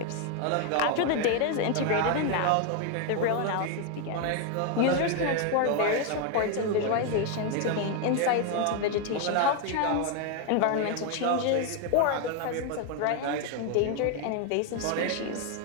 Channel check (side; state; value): both; different; correlation 0.01